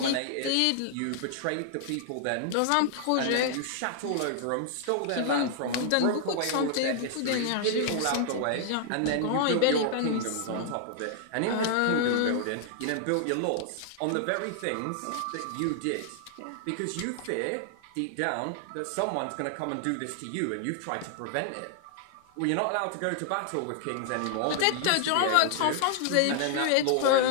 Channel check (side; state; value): both; different; correlation 0.00